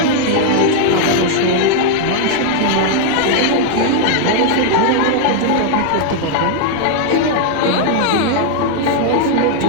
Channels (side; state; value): both; different; correlation 0.00